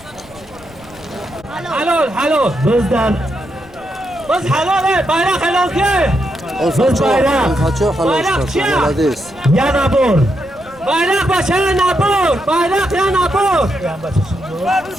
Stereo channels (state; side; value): noise; left; rumble, 23 dB below the sound